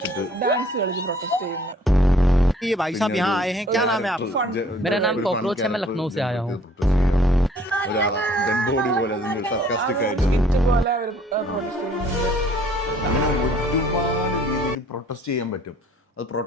പ്രൊട്ടസ്റ്റ് ചെയ്യുന്നു. ये भाई साहब यहाँ आए हैं, क्या नाम है आपका? मेरा नाम कॉकरोच है, मैं लखनऊ से आया हूँ. അങ്ങനെ ഒരുപാട് രീതിയിൽ പ്രൊട്ടസ്റ്റ് ചെയ്യാൻ പറ്റും. അത്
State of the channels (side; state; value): both; normal; correlation 0.57